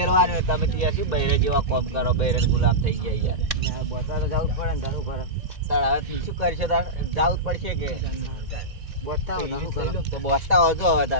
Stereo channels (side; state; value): left; late; 2.0 ms